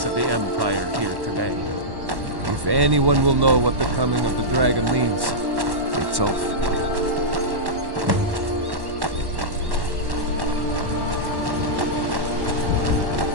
of the Empire here today. If anyone will know what the coming of the dragon means, it's Ulf.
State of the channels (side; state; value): left; late; 1.1 ms